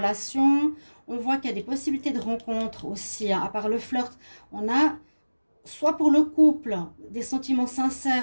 On voit qu'il y a des possibilités de rencontres aussi. Hein. À part le flirt, on a soit pour le couple des sentiments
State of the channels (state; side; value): inverted; both; correlation -1.00